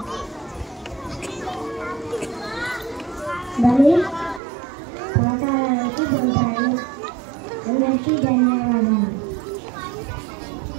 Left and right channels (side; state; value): left; drops out; at 4.4 s